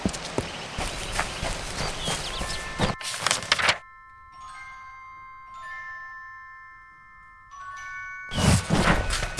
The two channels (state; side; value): identical; both; correlation 1.00